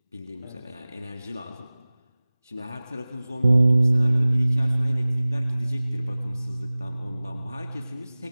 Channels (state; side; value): inverted; both; correlation -0.99